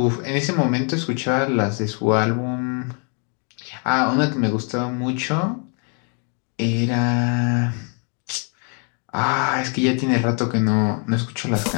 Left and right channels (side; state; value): right; quieter; 39.4 dB